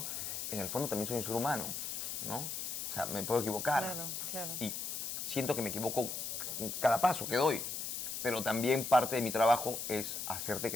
en el fondo también soy un ser humano, ¿no? O sea, me puedo equivocar. Claro, claro. Y siento que me equivoco cada paso que doy. Pero también parte de mi trabajo es hacerte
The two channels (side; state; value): left; noise; hiss, 4 dB below the sound